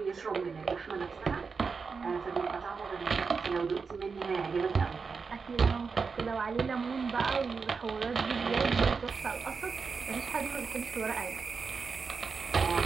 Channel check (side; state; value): left; quieter; 5.1 dB